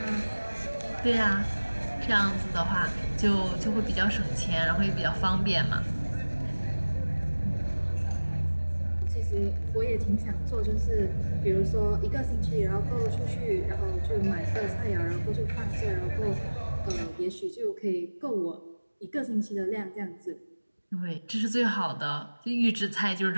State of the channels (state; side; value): inverted; both; correlation -1.00